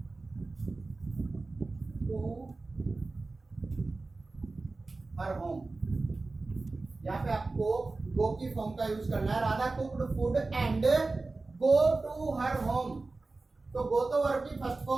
टू हर होम। यहाँ पे आपको गो की फॉर्म का यूज करना है। Radha cooked food and go to her home. तो गो तो वर्ब की फर्स्ट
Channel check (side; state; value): left; quieter; 3.5 dB